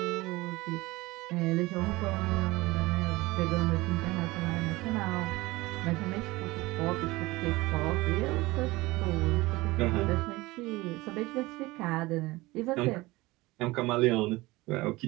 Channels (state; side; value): quieter; left; 20.7 dB